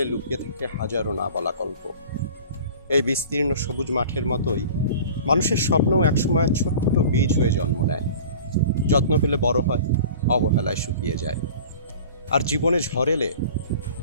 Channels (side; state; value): both; inverted; correlation -0.42